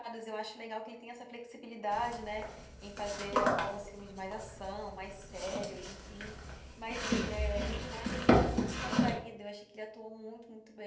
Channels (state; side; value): identical; both; correlation 1.00